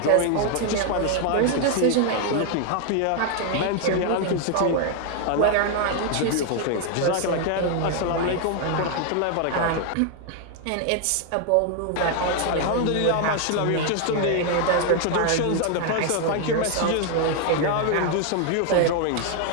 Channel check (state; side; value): different; both; correlation 0.00